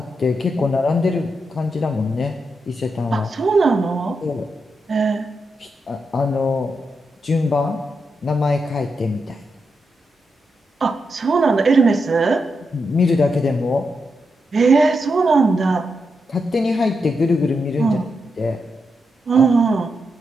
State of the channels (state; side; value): normal; both; correlation 0.84